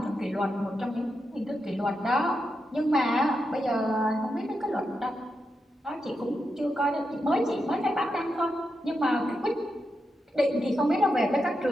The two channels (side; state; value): both; normal; correlation 0.86